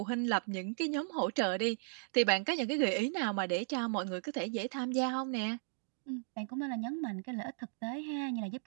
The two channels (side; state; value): left; silent; digital silence